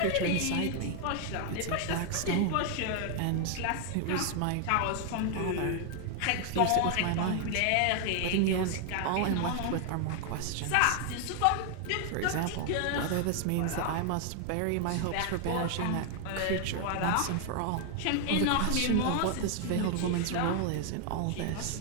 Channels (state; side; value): different; both; correlation 0.00